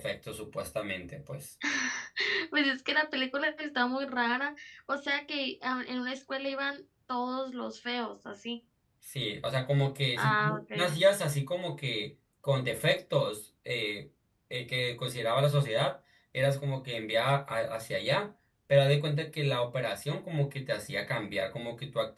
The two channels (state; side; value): identical; both; correlation 1.00